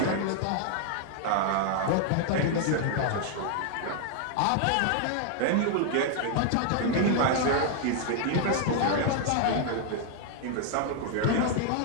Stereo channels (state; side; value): different; both; correlation 0.00